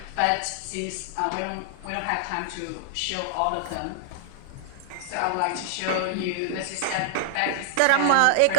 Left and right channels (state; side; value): different; both; correlation -0.01